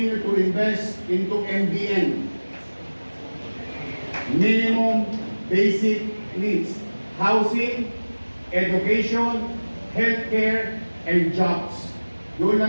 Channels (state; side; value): inverted; both; correlation -1.00